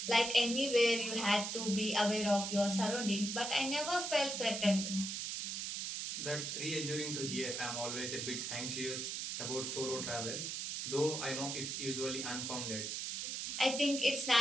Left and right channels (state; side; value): noise; right; hiss, 3 dB below the sound